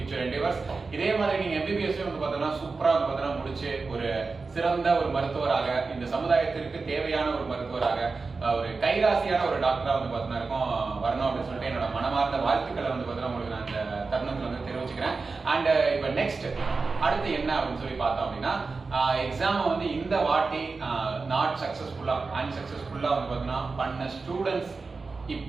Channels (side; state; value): left; quieter; 4.2 dB